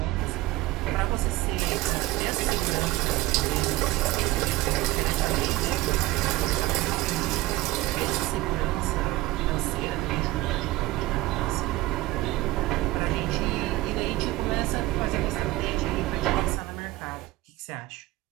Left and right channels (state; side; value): quieter; left; 18.3 dB